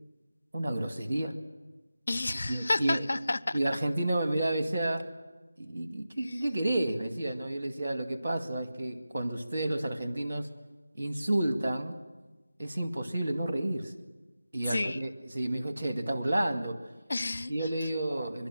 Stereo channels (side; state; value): both; inverted; correlation -0.93